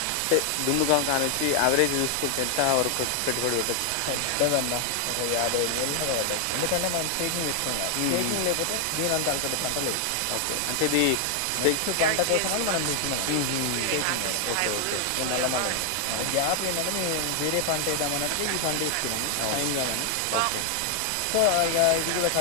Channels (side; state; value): both; different; correlation 0.00